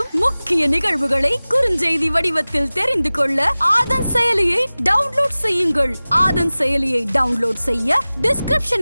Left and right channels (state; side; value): inverted; both; correlation -0.98